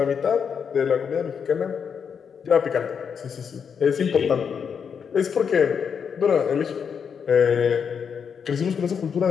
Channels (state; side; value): quieter; right; 6.8 dB